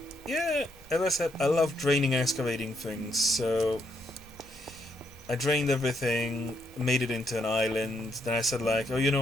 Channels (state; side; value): normal; both; correlation 0.76